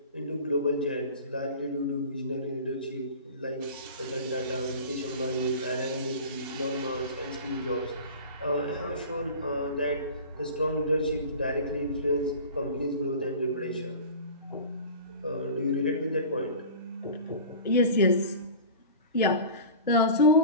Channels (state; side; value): inverted; both; correlation -0.36